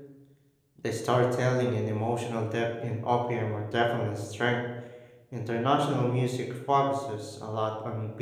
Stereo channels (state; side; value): identical; both; correlation 1.00